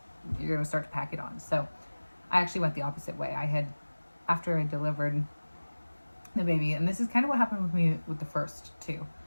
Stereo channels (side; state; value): both; inverted; correlation -1.00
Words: you're gonna start to pack it on. So I actually went the opposite way. After I delivered the baby, and this is kind of what happened with me with the first 2.